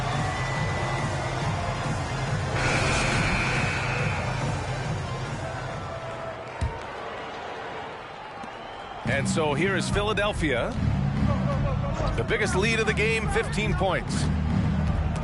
And so here is Philadelphia. The biggest lead of the game, 15 points.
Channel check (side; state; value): both; identical; correlation 1.00